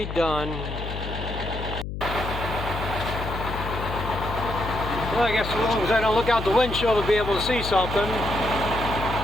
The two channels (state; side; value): noise; left; hum, 6 dB below the sound